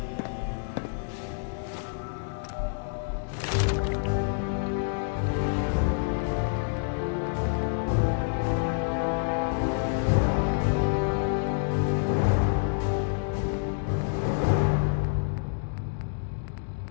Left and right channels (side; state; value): right; silent; 59 dB below the other